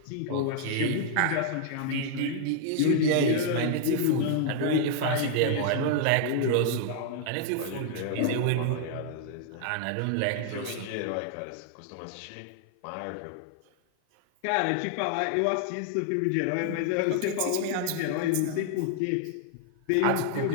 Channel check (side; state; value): both; different; correlation 0.00